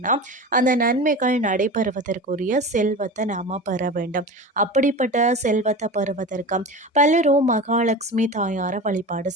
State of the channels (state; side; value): normal; both; correlation 0.30